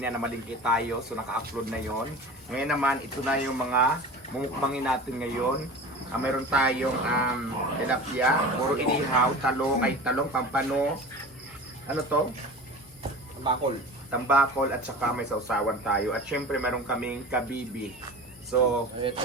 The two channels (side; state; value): both; normal; correlation 0.35